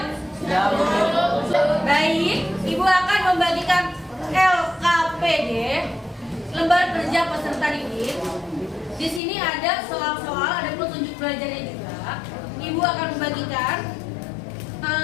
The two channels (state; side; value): drops out; right; at 9.2 s